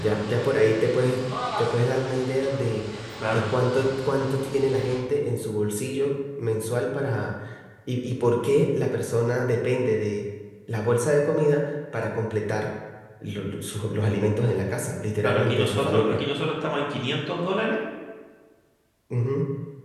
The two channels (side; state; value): both; identical; correlation 1.00